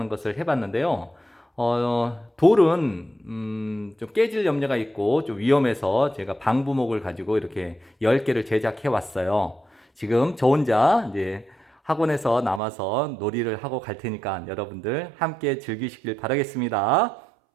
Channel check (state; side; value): drops out; left; at 12.6 s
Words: 것을 해봤는데요. 돌은 좀 깨질 염려가 있고 좀 위험해서 제가 방부목을 가지고 이렇게 10개를 제작해 왔어요. 지금 저 혼자 이제 학원에서 남아서 놀이를 하고 갈 테니까 여러분들 함께 즐기시길 바라겠습니다.